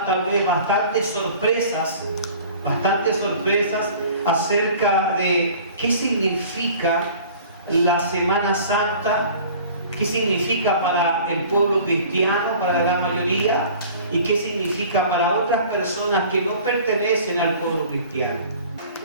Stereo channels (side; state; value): both; inverted; correlation -0.46